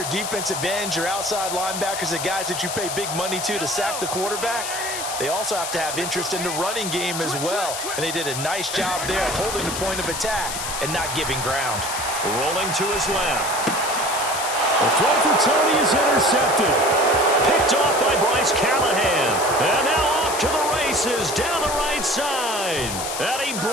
defensive ends, your outside linebackers, the guys that you pay big money to sack the quarterback, they also have to have interest in the running game as well. And they did a nice job there holding the point of attack and not giving ground. Rolling to his left. The throw for Tony is intercepted. Picked off by Bryce Callahan. And now off to the races down the right side. And he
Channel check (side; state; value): left; noise; hiss, 5 dB below the sound